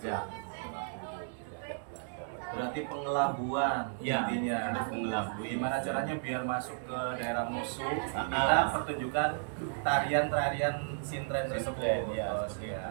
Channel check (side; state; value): left; silent; digital silence